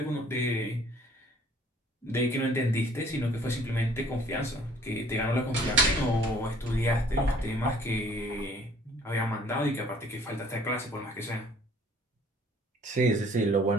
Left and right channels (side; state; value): both; normal; correlation 0.56